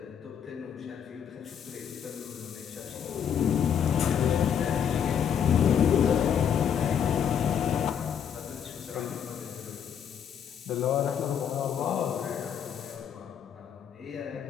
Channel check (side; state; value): right; quieter; 8.2 dB